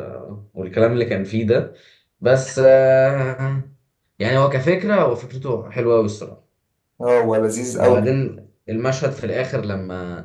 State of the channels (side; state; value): both; identical; correlation 1.00